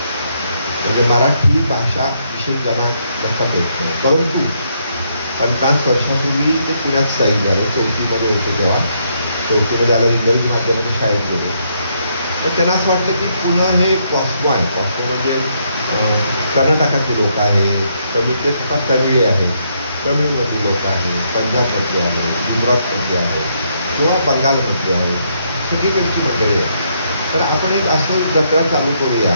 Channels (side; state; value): both; inverted; correlation -0.75